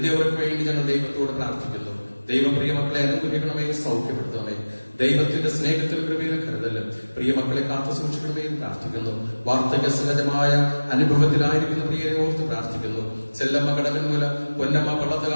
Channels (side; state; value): both; inverted; correlation -1.00